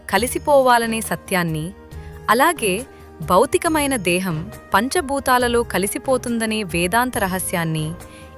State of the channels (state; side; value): identical; both; correlation 1.00